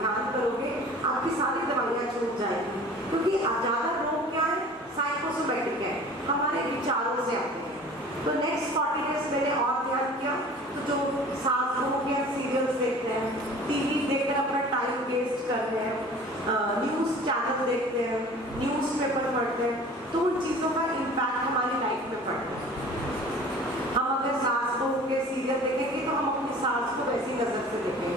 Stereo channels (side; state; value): both; normal; correlation 0.44